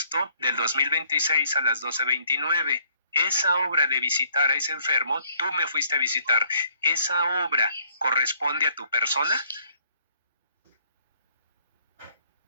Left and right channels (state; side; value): inverted; both; correlation -0.64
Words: del 2026 a las 12:29. Esa obra de visitar a ese enfermo, tú me fuiste a visitar. ¿Esa obra corresponde a tu persona?